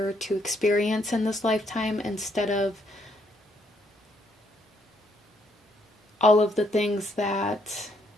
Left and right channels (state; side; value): normal; both; correlation 0.71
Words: to experience in this lifetime, instead of all of the things that